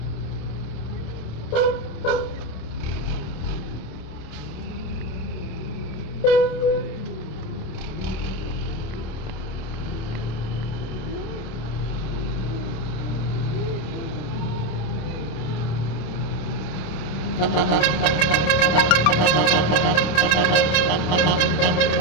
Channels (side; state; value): right; late; 27 ms